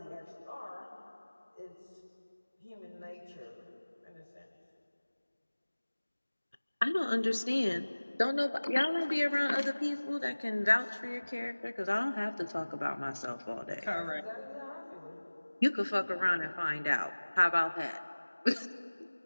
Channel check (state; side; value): inverted; both; correlation -1.00